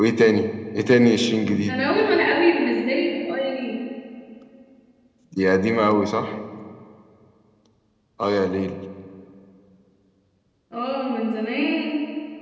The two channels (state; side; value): identical; both; correlation 1.00